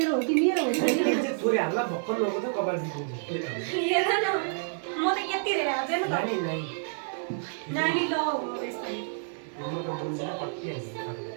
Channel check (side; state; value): left; silent; 59 dB below the other